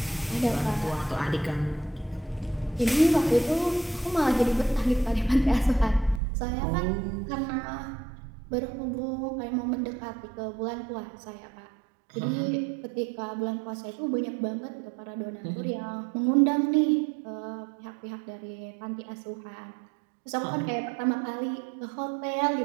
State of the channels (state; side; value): drops out; left; at 6.2 s